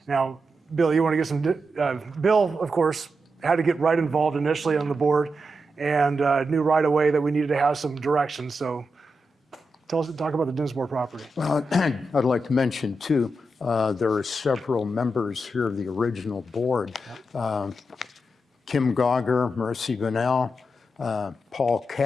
Now, Bill, you want to get some, Bill, of course, had to get right involved initially on the board and knew right away that we needed to have some direction. So talk about the Dinsmore property. Well, I'd like to mention too, there are several members here of the original board. Kim Gauger, Mercy Vanell, Paul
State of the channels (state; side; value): normal; both; correlation 0.87